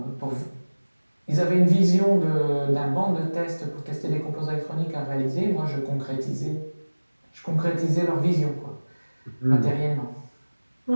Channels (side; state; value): both; inverted; correlation -1.00